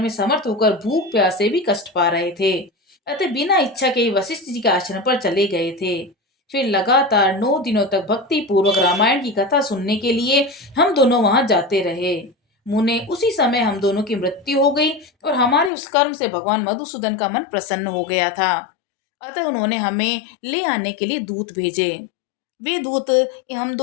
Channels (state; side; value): drops out; right; at 15.7 s